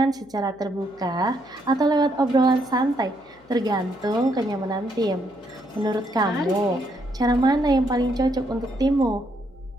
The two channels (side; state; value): left; noise; hum, 30 dB below the sound